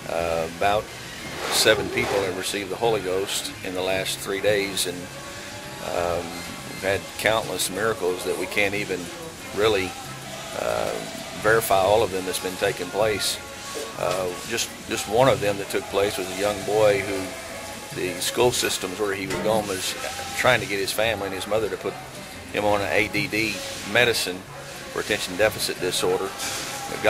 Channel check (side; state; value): both; identical; correlation 1.00